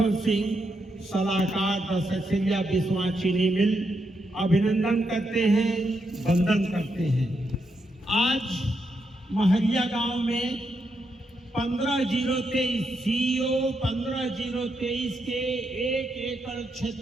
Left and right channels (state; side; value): normal; both; correlation 0.81